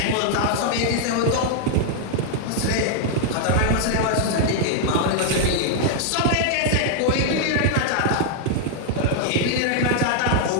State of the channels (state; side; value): different; both; correlation 0.00